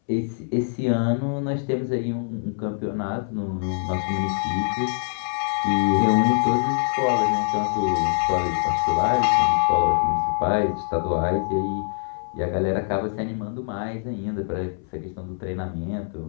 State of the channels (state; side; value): silent; right; 63 dB below the other